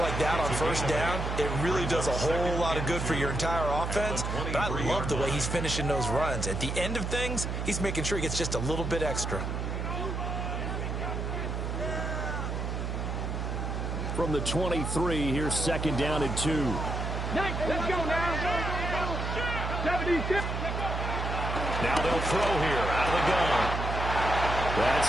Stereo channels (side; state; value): right; noise; hum, 2 dB below the sound